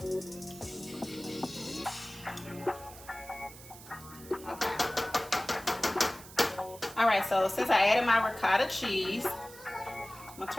Okay. All right, so since I added my ricotta cheese, I'm gonna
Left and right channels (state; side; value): noise; right; hiss, 17 dB below the sound